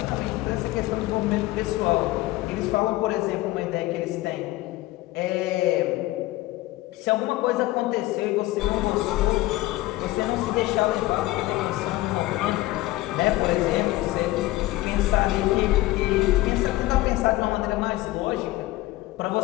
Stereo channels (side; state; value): right; quieter; 17.8 dB